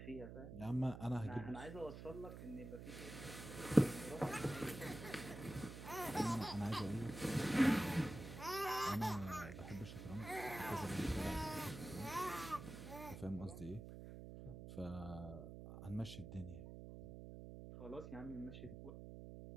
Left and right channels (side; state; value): right; noise; hum, 10 dB below the sound